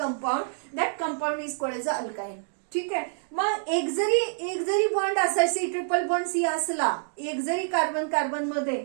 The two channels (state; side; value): silent; left; digital silence